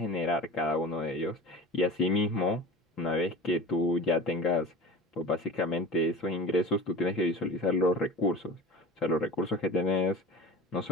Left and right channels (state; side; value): normal; both; correlation 0.35